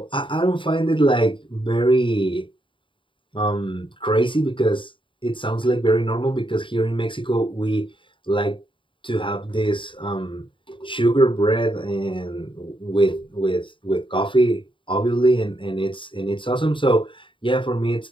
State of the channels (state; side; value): late; right; 0.25 ms